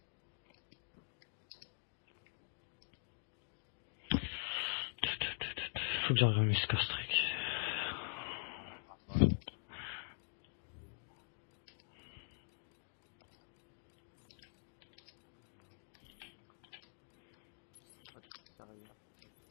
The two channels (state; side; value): silent; right; digital silence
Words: Faut que j'envoie mes score-streak. Ouais. Ça. Alors. Oh, t'es sérieux?